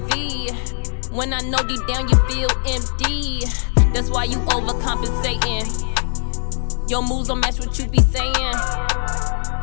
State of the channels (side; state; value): right; silent; digital silence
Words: When I know deep down you feel empty. That's why you overcompensating. Your moves don't match what you be saying.